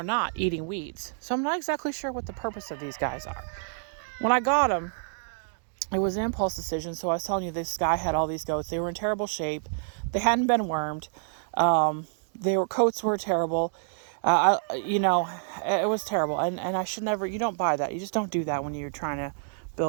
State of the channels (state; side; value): silent; left; digital silence